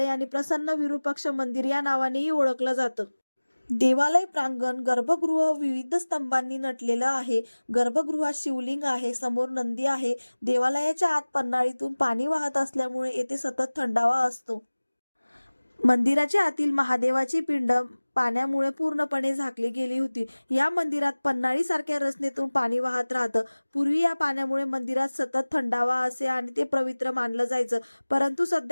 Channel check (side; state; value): both; inverted; correlation -1.00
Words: आणि प्रसन्न विरूपाक्ष मंदिर या नावानेही ओळखलं जातं. देवालय प्रांगण गर्भगृह विविध स्तंभांनी नटलेलं आहे. गर्भगृहात शिवलिंग आहे, समोर नंदी आहे. देवालयाच्या आत पन्हाळीतून पाणी वाहत असल्यामुळे येथे सतत थंडावा असतो. मंदिराच्या आतील महादेवाची पिंड पाण्यामुळे पूर्णपणे झाकली गेली होती. या मंदिरात पन्हाळीसारख्या रचनेतून पाणी वाहत राहतं. पूर्वी या पाण्यामुळे मंदिरात सतत थंडावा असे आणि ते पवित्र मानलं जायचं. परंतु